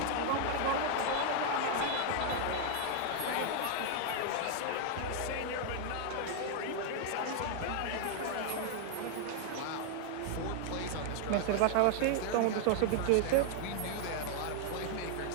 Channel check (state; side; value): different; both; correlation 0.00